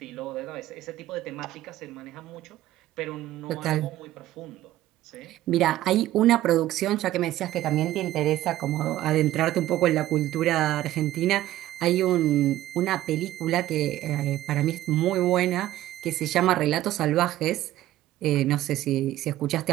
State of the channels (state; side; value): quieter; left; 14.6 dB